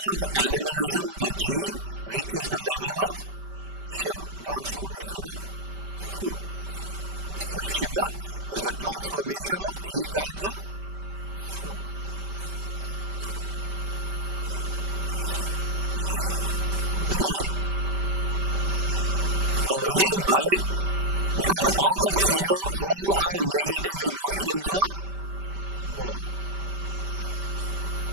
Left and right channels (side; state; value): left; late; 5.1 ms